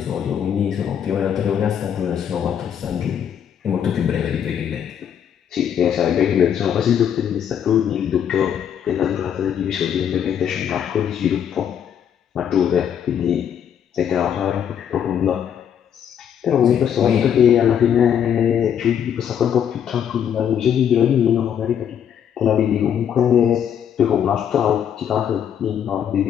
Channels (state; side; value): quieter; right; 8.8 dB